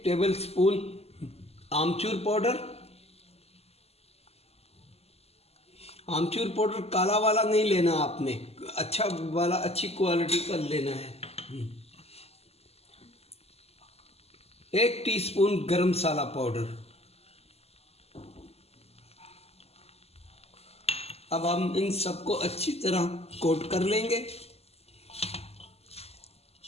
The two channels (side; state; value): right; late; 0.29 ms